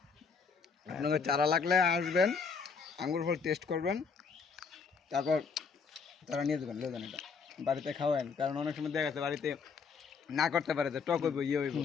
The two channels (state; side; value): quieter; right; 5.5 dB